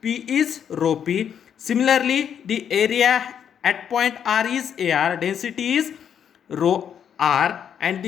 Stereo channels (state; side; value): quieter; right; 8.4 dB